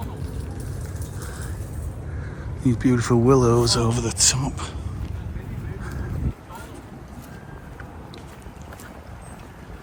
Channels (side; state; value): both; identical; correlation 1.00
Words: These beautiful willows over the top.